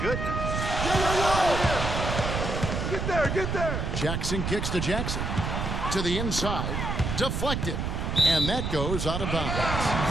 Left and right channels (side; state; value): right; noise; rumble, 2 dB below the sound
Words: goodness. Get there, get there. Jackson kicks to Jackson. To the inside. Deflected. And that goes out of bounds.